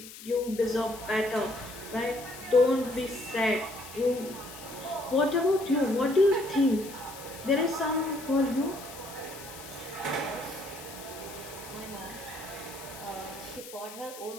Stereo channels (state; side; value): noise; left; hiss, 15 dB below the sound